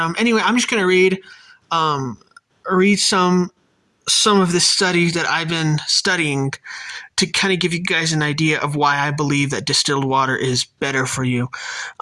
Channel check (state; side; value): identical; both; correlation 1.00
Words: anyway, I'm just going to read some of the studies that I've been studying to kind of give you guys an idea of why I believe that distilled water is better for you.